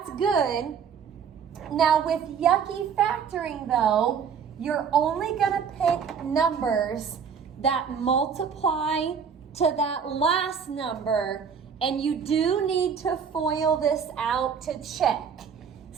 good. Now with yucky factoring though, you're only going to pick numbers that multiply to that last number, and you do need to FOIL this out to check.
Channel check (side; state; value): left; quieter; 6.9 dB